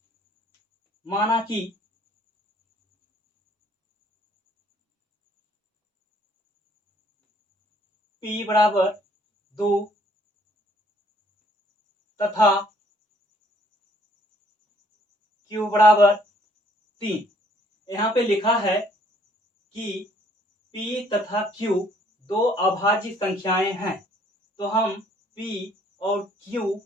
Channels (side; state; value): both; normal; correlation 0.62